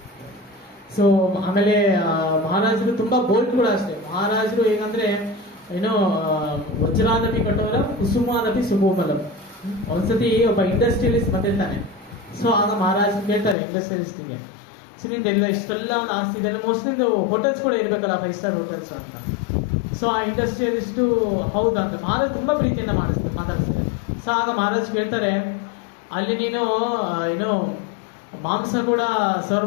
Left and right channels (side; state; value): right; drops out; at 13.6 s